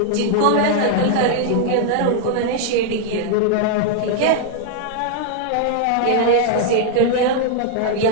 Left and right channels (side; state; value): both; different; correlation 0.00